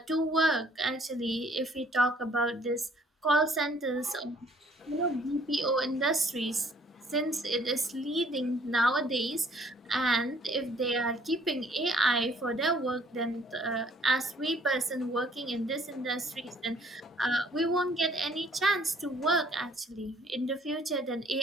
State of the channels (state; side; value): normal; both; correlation 0.60